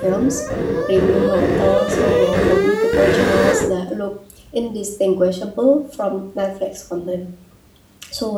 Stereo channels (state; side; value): identical; both; correlation 1.00